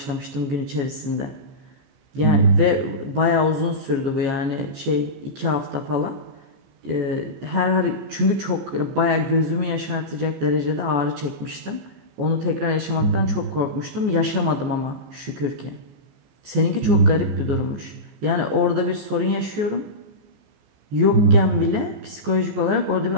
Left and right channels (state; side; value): late; left; 14 ms